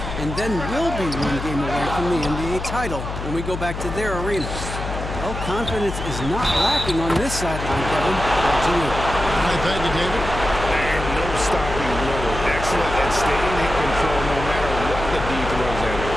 and then we'll be 1 game away from the NBA title when we go back to their arena. Well, confidence is not lacking on this sideline, Kevin. Back to you. I thank you, David. And no stopping Lillard. Excellent at staying in control no matter what the D throws at him.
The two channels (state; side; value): noise; left; hum, 6 dB below the sound